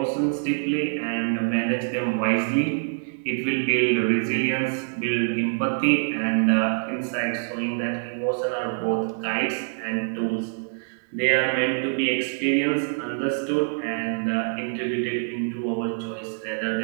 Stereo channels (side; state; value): left; silent; digital silence